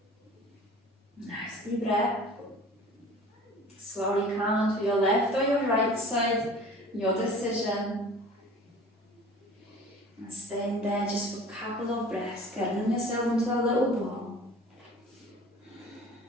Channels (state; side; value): normal; both; correlation 0.44